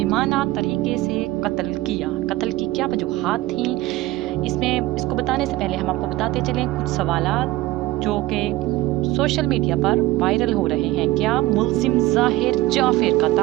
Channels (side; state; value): left; quieter; 17.6 dB